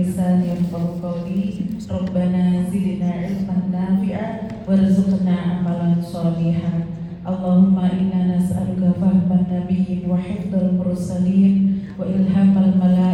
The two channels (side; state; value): both; identical; correlation 1.00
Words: lisani yafqahu qawli. Rabbana zidna ilman nafi'a warzuqna amalan shalihan. Allahumma inna nas'aluka fahman nabiyyin wa hifdzal mursalin wa ilhamal